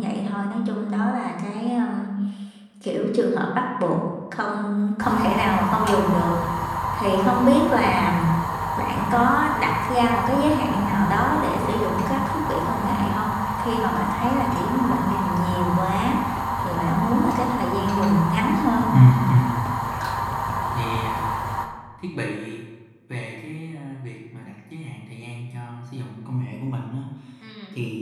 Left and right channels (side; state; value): both; identical; correlation 1.00